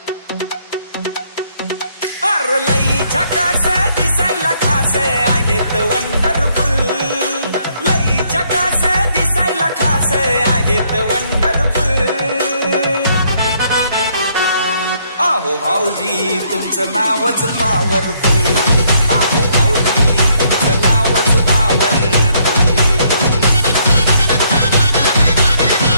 लई झकास दिसायला खास आहेत वंडरफुल लई झकास दिसायला खास आहेत वंडरफुल आहो भाऊजी तुमचं नावच पॉवरफुल आहो भाऊजी तुमचं नावच पॉवरफुल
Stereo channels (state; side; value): inverted; both; correlation -0.69